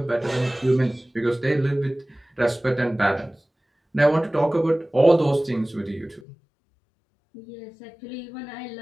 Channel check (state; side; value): drops out; right; at 6.2 s